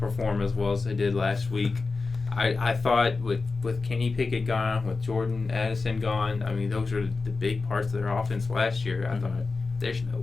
as well as they did last week. I thought with Kenny Pickett gone, with Jordan Addison gone, those are the big parts of their offense last year. I thought there's no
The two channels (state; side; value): quieter; right; 4.1 dB